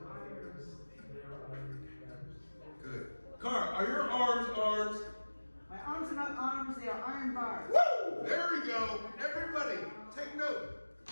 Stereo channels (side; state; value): both; inverted; correlation -1.00